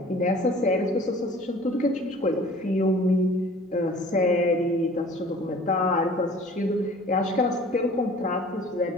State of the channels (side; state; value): both; normal; correlation 0.48